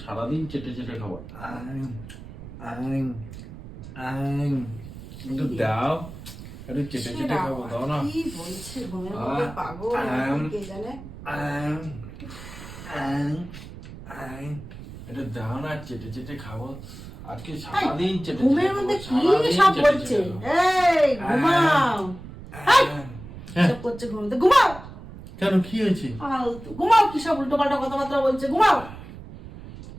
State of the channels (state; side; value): noise; right; rumble, 14 dB below the sound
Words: সারাদিন চেটে চেটে খাবো। একটু দাও, একটু চেটে চেটে খাবো, দাও না। কি বলছে ঘুমের মধ্যে পাগল কে জানে। একটু দাও না, চেটে চেটে খাবো, আজকে সারাদিন চেটে চেটে ঘুমের মধ্যে কি সব বলছে। এই ঘুমাও, সব করছে ঘুমের মধ্যে, ঘুমাও। কেন, কি হয়েছে? ঘুমাও, কি সব উল্টো পাল্টা কথাবার্তা বলছে, ঘুমাও